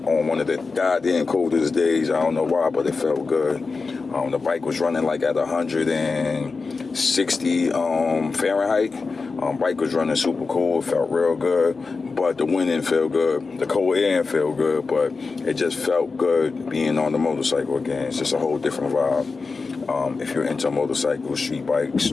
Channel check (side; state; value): right; quieter; 4.3 dB